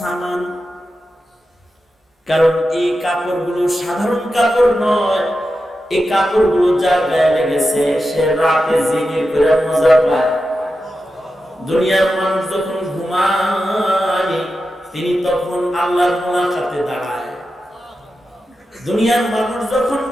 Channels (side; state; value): both; normal; correlation 0.91